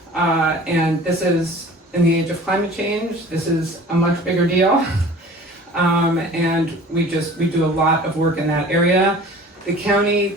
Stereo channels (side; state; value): both; normal; correlation 0.44